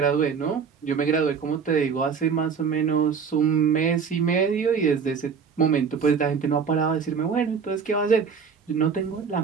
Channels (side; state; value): left; quieter; 6.1 dB